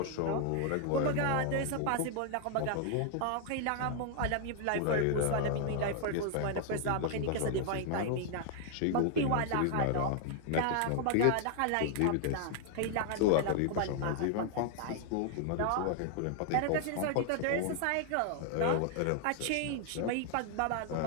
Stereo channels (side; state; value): both; different; correlation 0.00